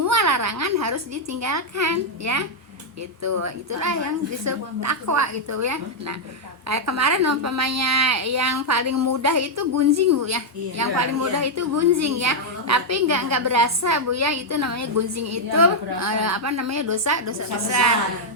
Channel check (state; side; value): normal; both; correlation -0.03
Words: larangan harus ditinggalkan ya. Itulah yang disebut takwa gitu ya. Nah kayak kemarin umpamanya yang paling mudah itu gunjing Bu ya. Yang paling mudah itu gunjing ya. Tapi nggak berasa Bu ya, itu namanya gunjing itu apa namanya, dosa besar.